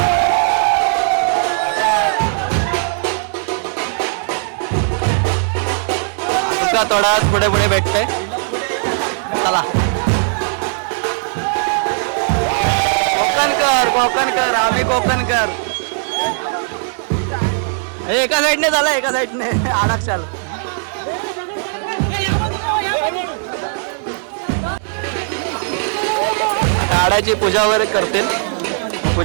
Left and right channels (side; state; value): left; silent; digital silence